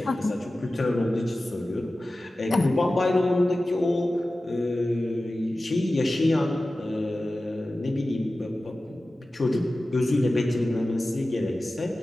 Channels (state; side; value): normal; both; correlation 0.95